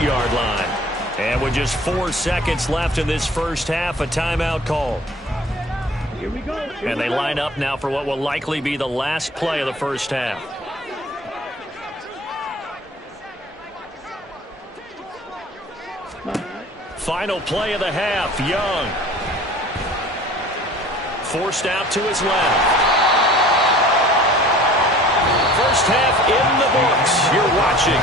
line. And with just 4 seconds left in this first half, a timeout call. Here we go. And they line up now for what will likely be the last play of the first half. Final play of the half, Young. Forced out to his left. First half in the books. You're watching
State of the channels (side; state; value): both; normal; correlation 0.47